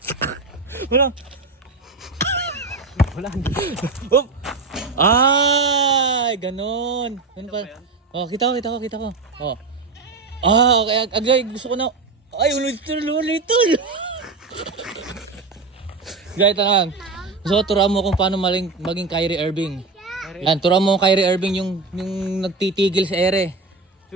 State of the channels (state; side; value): quieter; left; 3.9 dB